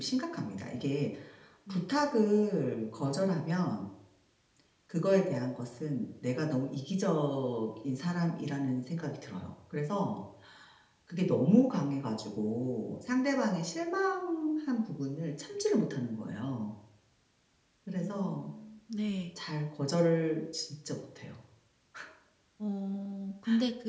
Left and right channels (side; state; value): both; identical; correlation 1.00